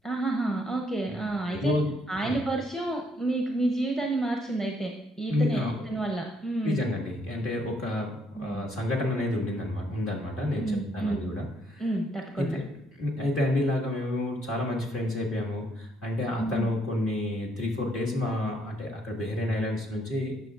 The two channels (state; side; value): normal; both; correlation 0.70